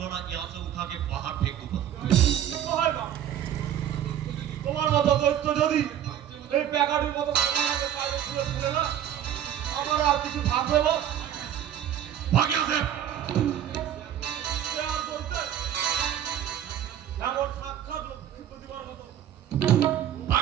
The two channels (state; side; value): quieter; left; 10.5 dB